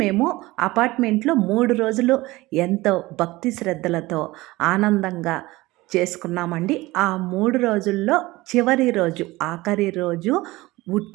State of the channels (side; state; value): left; quieter; 19.8 dB